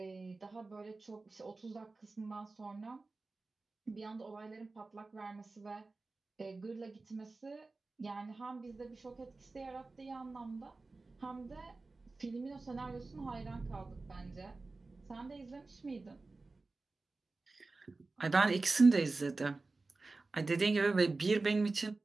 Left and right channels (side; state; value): left; quieter; 3.5 dB